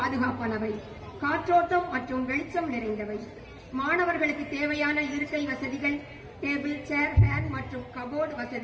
காற்றோட்டம் மற்றும் வெளிச்சம் நிறைந்தவை. மாணவர்களுக்கு தேவையான இருக்கை வசதிகள், டேபிள், சேர், ஃபேன் மற்றும் கபோர்டு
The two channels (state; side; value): identical; both; correlation 1.00